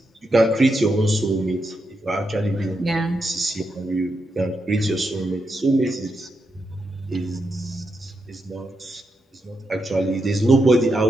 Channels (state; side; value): normal; both; correlation 0.84